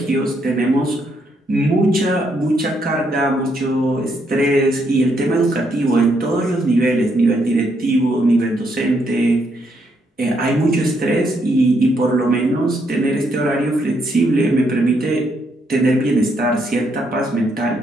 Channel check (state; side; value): normal; both; correlation 0.75